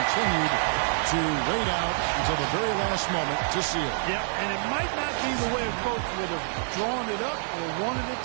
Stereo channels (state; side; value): silent; left; digital silence